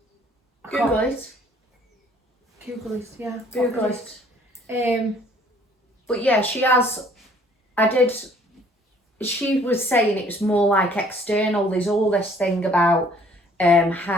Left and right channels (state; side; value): normal; both; correlation 0.58